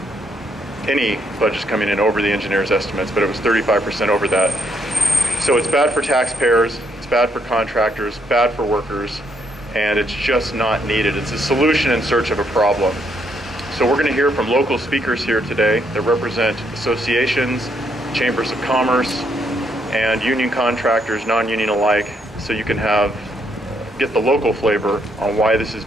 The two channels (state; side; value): normal; both; correlation 0.74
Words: any budgets coming in over the engineer's estimates, but it was 35% over that. So it's bad for taxpayers, it's bad for contractors, bad for workers, and it's just not needed. It's a solution in search of a problem. So we're going to hear from local speakers here today that represent associations, chambers of commerce, and union contractors, non-union alike, so you can get the local flavor on why this is